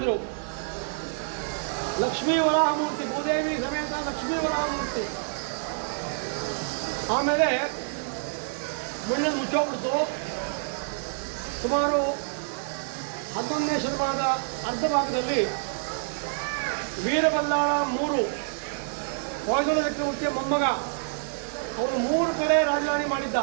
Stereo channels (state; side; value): silent; left; digital silence